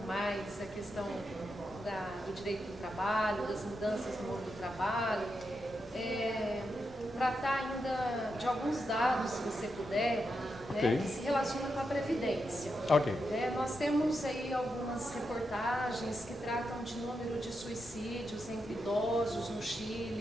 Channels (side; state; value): both; normal; correlation 0.85